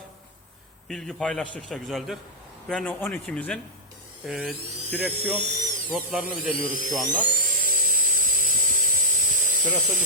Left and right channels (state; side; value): normal; both; correlation -0.08